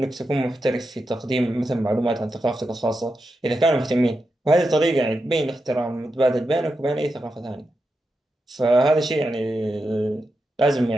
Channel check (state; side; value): normal; both; correlation 0.88